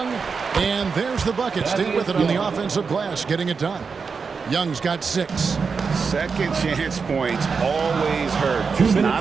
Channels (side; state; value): left; quieter; 5.3 dB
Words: And there's the bucket. Stay with it on the offensive glass, getting it done. Young's got 6. Second chance points always hurt. Just